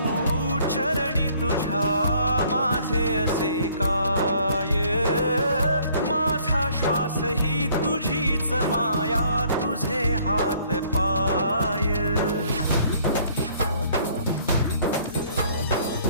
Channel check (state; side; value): inverted; both; correlation -0.60